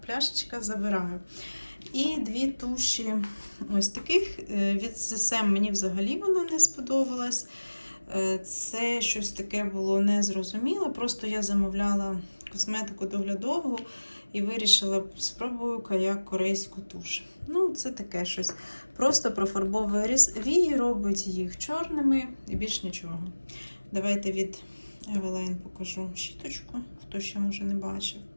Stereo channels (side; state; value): both; inverted; correlation -1.00